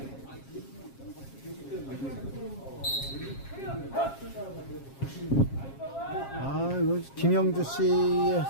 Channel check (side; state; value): right; late; 7.4 ms